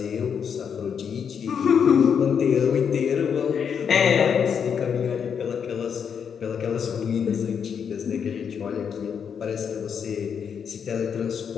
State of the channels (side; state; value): right; quieter; 7.2 dB